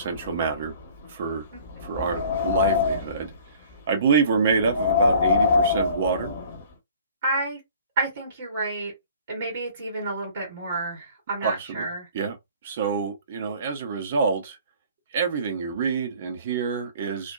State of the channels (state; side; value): inverted; both; correlation -0.51